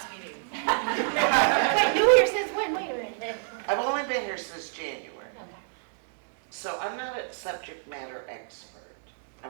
meeting. Wait, new here since when? Wait a minute. I've only been here since January. Okay. So I'm not a subject matter expert.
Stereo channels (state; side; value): silent; left; digital silence